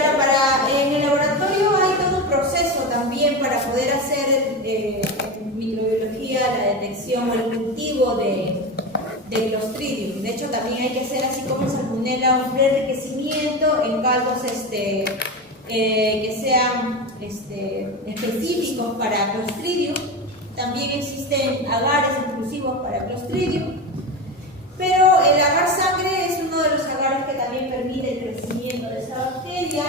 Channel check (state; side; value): normal; both; correlation 0.22